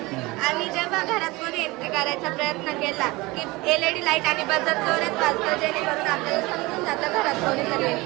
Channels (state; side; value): quieter; left; 22.4 dB